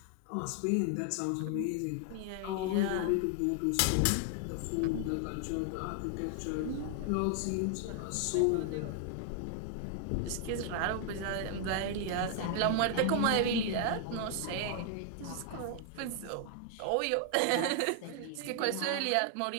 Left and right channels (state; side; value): different; both; correlation 0.00